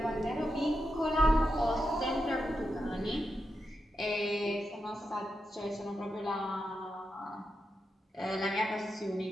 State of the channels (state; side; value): normal; both; correlation 0.87